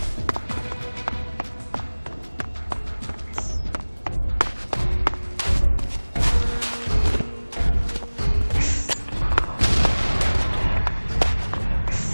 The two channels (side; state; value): both; inverted; correlation -1.00